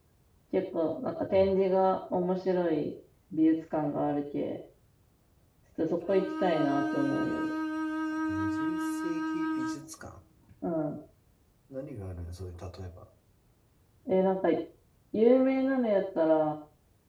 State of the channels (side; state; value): both; identical; correlation 1.00